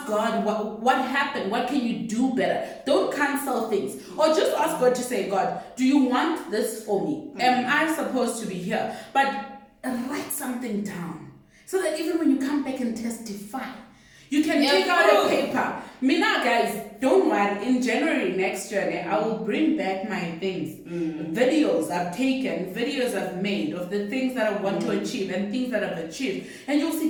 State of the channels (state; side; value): identical; both; correlation 1.00